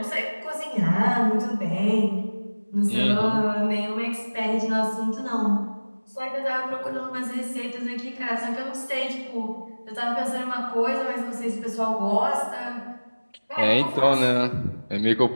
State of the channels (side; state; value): both; inverted; correlation -1.00